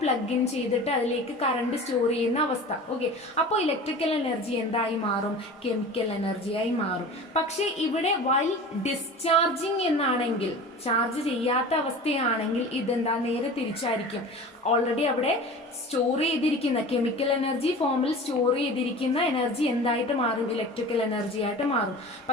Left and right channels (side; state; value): both; normal; correlation 0.37